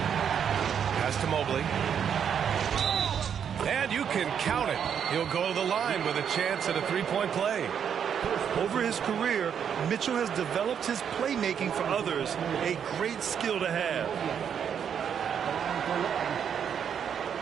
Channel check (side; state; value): left; quieter; 8.0 dB